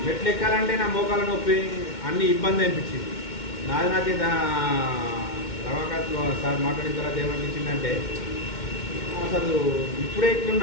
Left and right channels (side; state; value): right; late; 2.1 ms